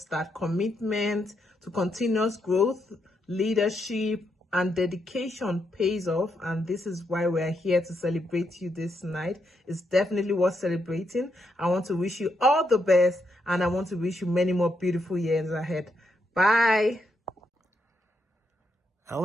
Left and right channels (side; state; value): both; normal; correlation 0.80